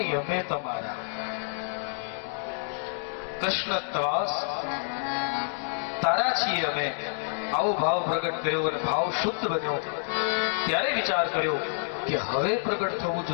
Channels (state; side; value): silent; right; digital silence